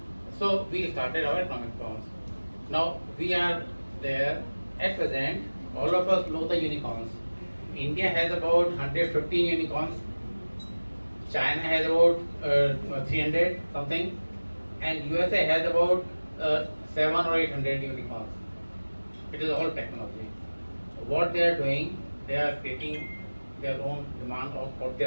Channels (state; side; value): inverted; both; correlation -1.00